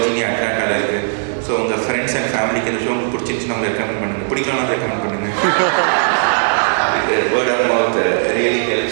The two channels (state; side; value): silent; left; digital silence